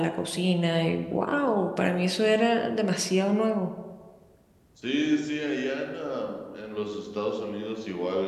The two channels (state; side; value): identical; both; correlation 1.00